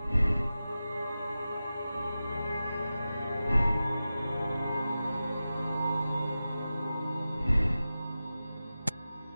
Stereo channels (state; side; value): inverted; both; correlation -0.94